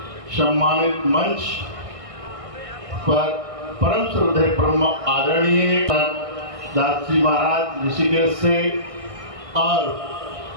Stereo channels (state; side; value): late; left; 1.6 ms